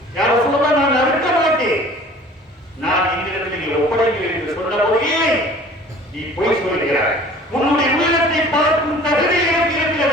யாரும் சொல்லுவா, நான் அறுக்க மாட்டேன், நான் என்னிடத்தில் நீ ஒப்படைக்கிறேன் என்று சொன்ன போதே நீ பொய் சொல்கிறாய். உன்னுடைய உள்ளத்தை பார்க்கும் தகுதி எனக்கு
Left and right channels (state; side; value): normal; both; correlation 0.47